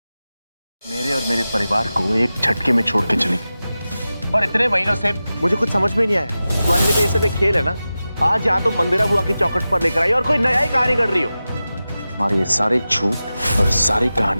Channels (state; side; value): inverted; both; correlation -0.94